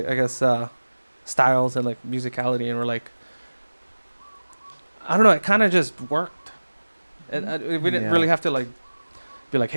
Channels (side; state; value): both; inverted; correlation -1.00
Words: guess, styles and like musicality, and we're like, I don't know, it kind of just worked. And we didn't really have to like be like,